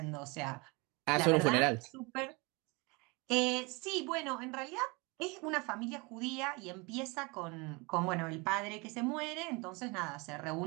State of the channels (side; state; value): left; quieter; 27.5 dB